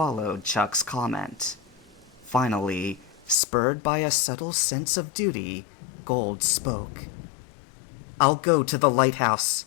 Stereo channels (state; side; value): drops out; right; at 3.4 s